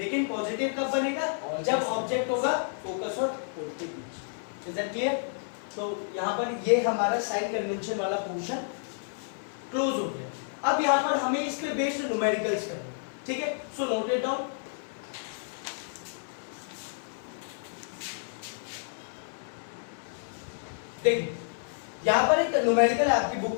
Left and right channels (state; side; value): silent; right; 58 dB below the other